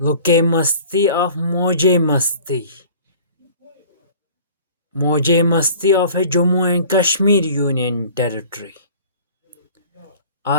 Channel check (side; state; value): both; inverted; correlation -0.47